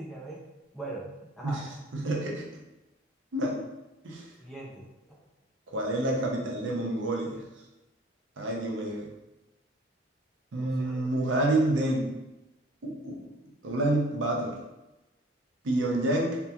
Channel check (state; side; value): normal; both; correlation 0.51